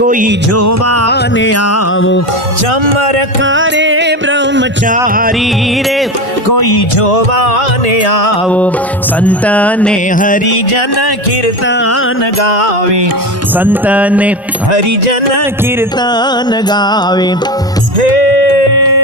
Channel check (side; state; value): both; normal; correlation 0.23